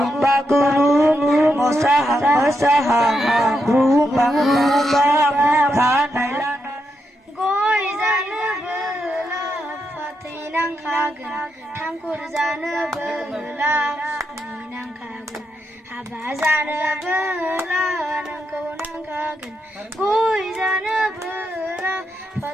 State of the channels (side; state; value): both; normal; correlation 0.83